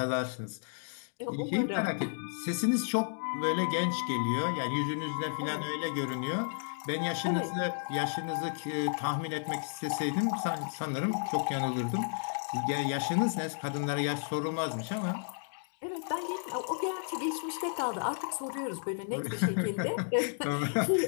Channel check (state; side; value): silent; right; digital silence